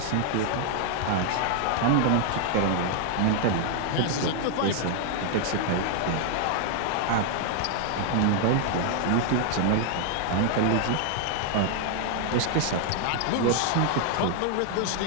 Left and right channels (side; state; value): both; different; correlation 0.00